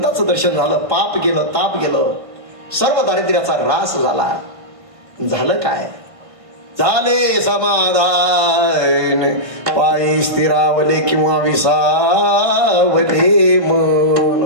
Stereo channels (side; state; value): left; late; 1.5 ms